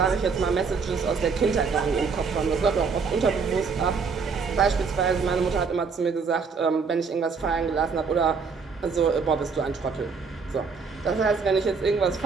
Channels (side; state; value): left; quieter; 5.2 dB